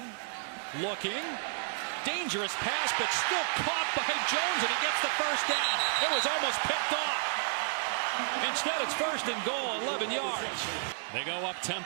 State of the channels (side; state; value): left; silent; digital silence